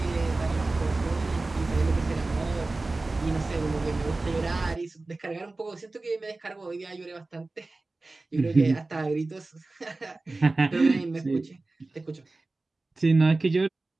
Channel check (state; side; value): quieter; left; 3.3 dB